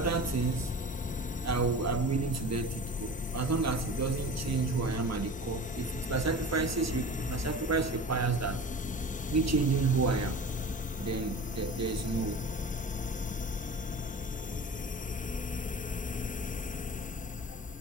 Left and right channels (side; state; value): both; normal; correlation 0.36